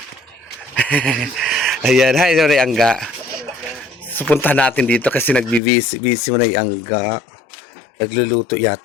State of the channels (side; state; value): right; drops out; at 5.6 s